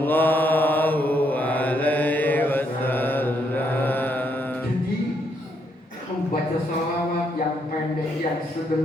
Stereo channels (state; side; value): normal; both; correlation 0.75